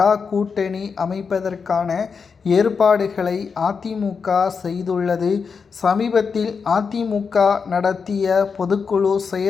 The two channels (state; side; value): quieter; right; 5.6 dB